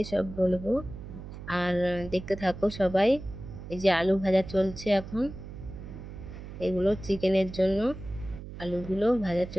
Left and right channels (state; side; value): noise; right; hum, 12 dB below the sound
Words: সব বলবো, আর দেখতে থাকো সবাই। এই যে আলু ভাজা চলছে এখন, এগুলো চিকেনের জন্য আলুগুলো ভাজা